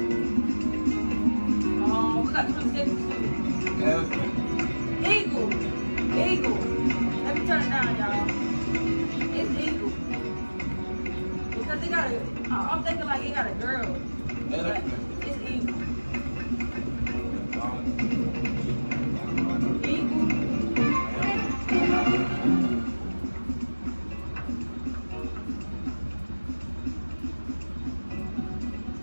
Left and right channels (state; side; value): inverted; both; correlation -1.00